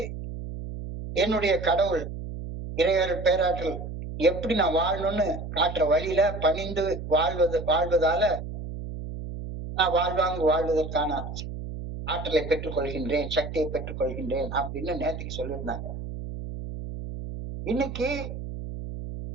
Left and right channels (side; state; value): right; noise; hum, 8 dB below the sound